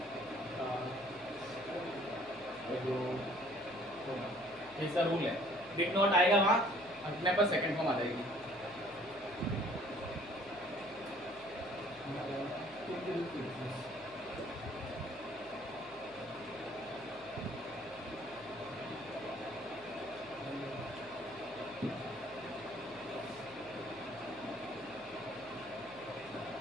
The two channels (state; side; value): noise; left; hum, 23 dB below the sound